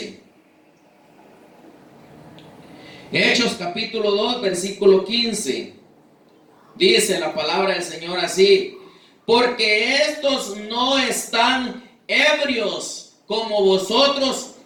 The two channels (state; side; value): identical; both; correlation 1.00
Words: Hechos capítulo 2, versículo 15. Dice la palabra del Señor así: porque estos no están ebrios como vosotros